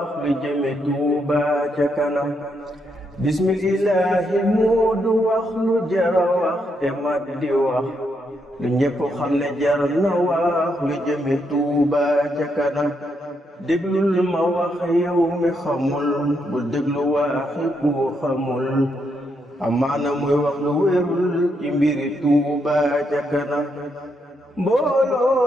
lu jëme Tuuba ca kanam. bismillahi moo du wax lu jara wax te mat di wax lu ñépp xam ne jar na wax lu jëme Tuuba ca kanam. déglul ma wax yow mi xamul bul déglu waxi ku xamul amaana muy wax lu wérul ci mbiri Tuuba ca kanam.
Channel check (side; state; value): both; normal; correlation 0.78